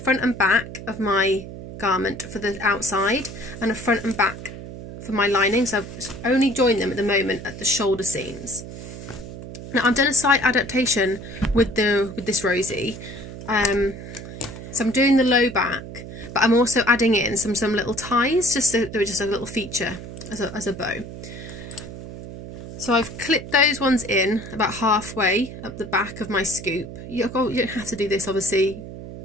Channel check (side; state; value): right; noise; hum, 12 dB below the sound